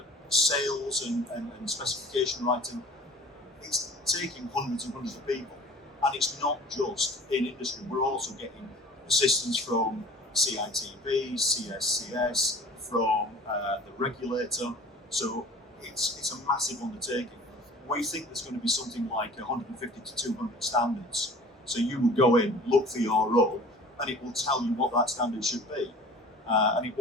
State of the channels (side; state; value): both; normal; correlation 0.44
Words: sales and specification writing, it's taking hundreds and hundreds of people. And it's not just in industry, we're also getting assistance from CITB, CSCS, from the regulator. So it's a massive undertaking. We think there's going to be something like 150 to 200 standards. So you will go in, look for your role, and it will tell you what that standard should be. And it